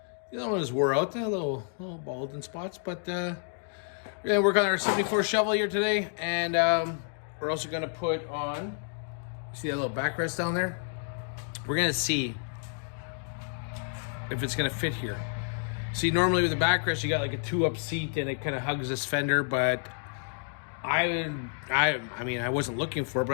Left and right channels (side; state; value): right; silent; 58 dB below the other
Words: The other one was wore out, a little bald in spots, but we're gonna work on our 74 shovel here today, and we're also gonna put on, see that little backrest down there? We're gonna see if it's gonna fit here. See, normally with the backrest, you got like a 2-up seat and it kind of hugs this fender, but I mean, I wasn't looking for it,